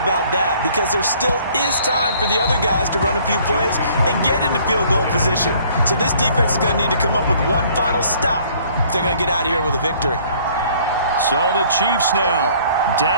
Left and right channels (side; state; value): both; inverted; correlation -0.58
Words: that, because there still is time for the other guys to run a few plays and get into field goal position. So this defense is going to need to come up with one final stop if they're going to get out of here with a victory. So the Chiefs now